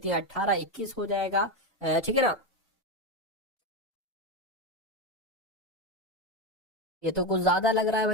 18, 21 हो जाएगा। ठीक है ना। ये तो कुछ ज्यादा लग रहा है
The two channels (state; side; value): normal; both; correlation 0.12